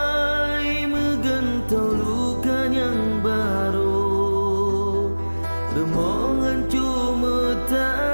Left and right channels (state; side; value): inverted; both; correlation -1.00